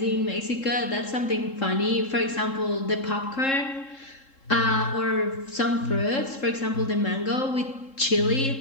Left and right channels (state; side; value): late; right; 3.7 ms